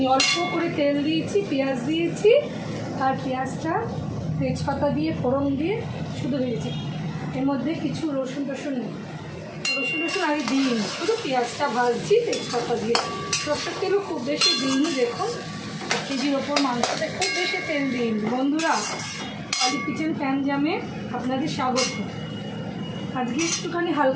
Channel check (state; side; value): identical; both; correlation 1.00